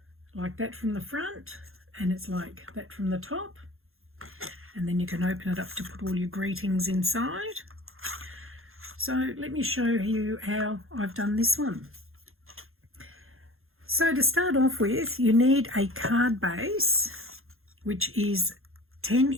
like that from the front, and it's like that from the top, and then you can open it up to put all your greetings inside. So let me show you how I've done this one. So to start off with, you need a card base, which is 10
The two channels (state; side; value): late; left; 0.61 ms